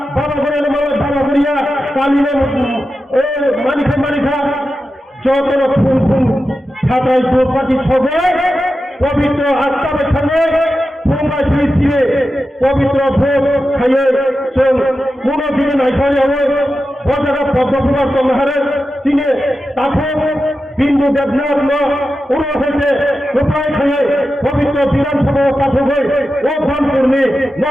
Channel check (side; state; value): both; normal; correlation 0.91